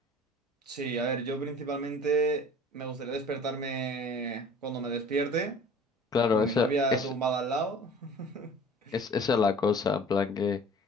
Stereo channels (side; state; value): both; normal; correlation 0.46